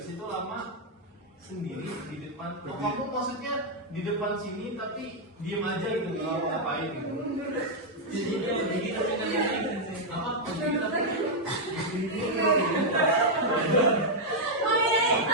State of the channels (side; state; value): both; normal; correlation -0.02